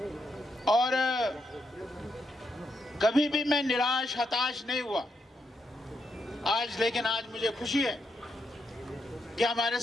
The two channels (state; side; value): normal; both; correlation 0.81